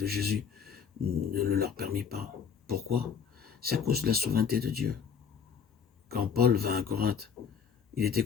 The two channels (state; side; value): quieter; right; 6.9 dB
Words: Jésus ne le leur permit pas. Pourquoi? C'est à cause de la souveraineté de Dieu. Quand Paul vint à Corinthe, il était